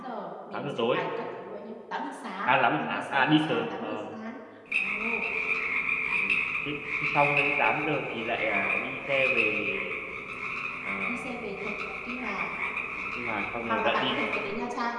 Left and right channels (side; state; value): both; identical; correlation 1.00